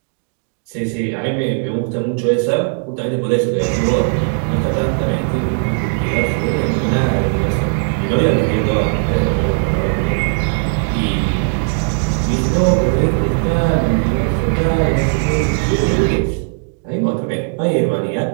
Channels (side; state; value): left; silent; 62 dB below the other